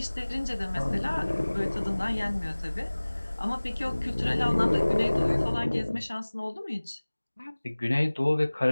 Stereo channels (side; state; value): both; inverted; correlation -1.00